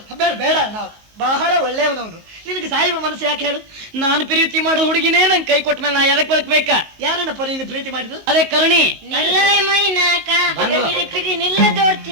ಬೇಡ, ನಾವು ಬಹಳ ಒಳ್ಳೆಯವನವನು. ನಿನಗೆ ಸಾಯುವ ಮನಸ್ಸು ಯಾಕೆ ಹೇಳು? ನಾನು ಪ್ರೀತಿ ಮಾಡೋ ಹುಡುಗಿನೇ ನಂಗೆ ಕೈ ಕೊಟ್ಟ ಮೇಲೆ ನಾ ಎದಕ್ ಬದುಕ್ಬೇಕಾ? ಯಾರನ್ನಪ್ಪ ನೀನು ಪ್ರೀತಿ ಮಾಡಿದ್ದು? ಅದೇ ಕರುಣಿ.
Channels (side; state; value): left; late; 19 ms